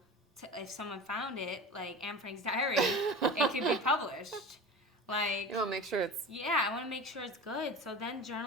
to, if someone found it, like Anne Frank's diary, it could be published. Like You want to make sure it's... Yeah, I want to make sure it's good. So then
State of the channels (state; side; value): normal; both; correlation 0.33